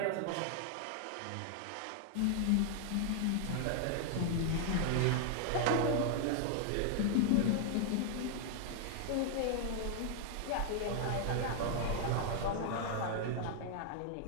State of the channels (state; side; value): different; both; correlation 0.00